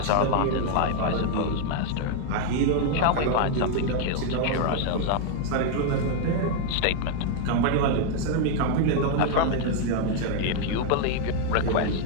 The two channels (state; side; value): different; both; correlation 0.00